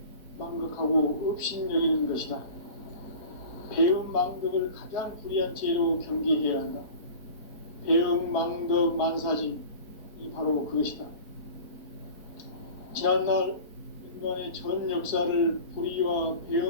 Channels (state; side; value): late; right; 4.2 ms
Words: 망극하고 업신여기는 것이다. 배음 망덕을 가장 불의한 죄로 경계해야 한다. 배음 망덕 만사진, 이 바로 그것이다. 지난날 인간의 전 역사를 불의와